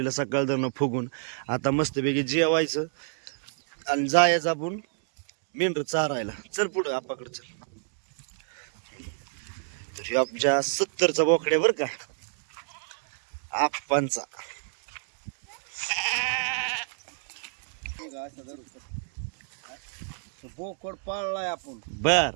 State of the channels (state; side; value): silent; left; digital silence